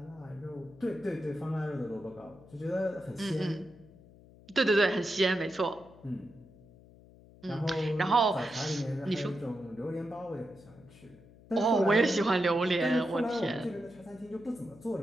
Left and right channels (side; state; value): left; noise; hum, 23 dB below the sound